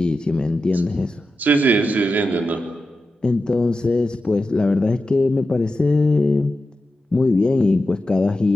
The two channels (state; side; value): normal; both; correlation 0.91